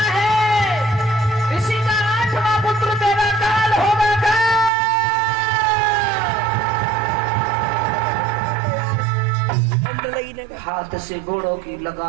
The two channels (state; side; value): drops out; left; at 4.7 s